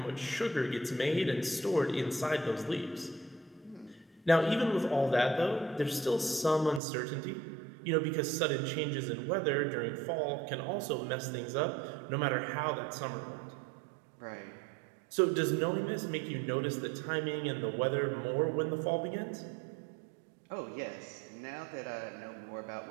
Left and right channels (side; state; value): left; drops out; at 6.8 s